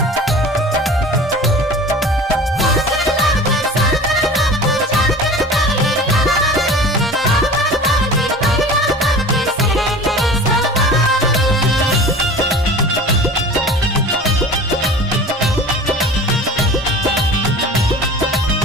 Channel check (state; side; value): normal; both; correlation 0.39